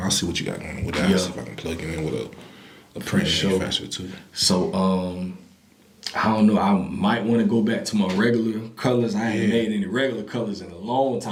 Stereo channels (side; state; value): both; identical; correlation 1.00